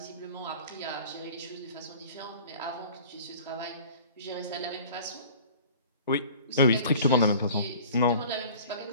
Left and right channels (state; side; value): inverted; both; correlation -0.45